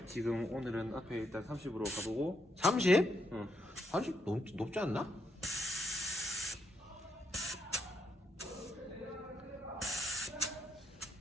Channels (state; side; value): normal; both; correlation 0.78